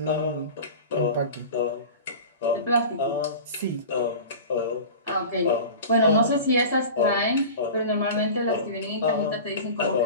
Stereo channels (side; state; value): both; inverted; correlation -0.35